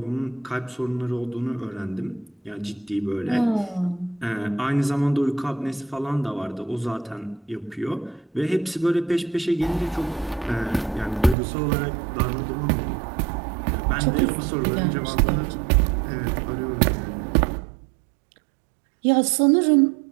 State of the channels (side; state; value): left; drops out; at 11.4 s